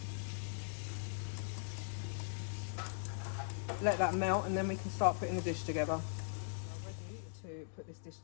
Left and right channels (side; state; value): right; silent; digital silence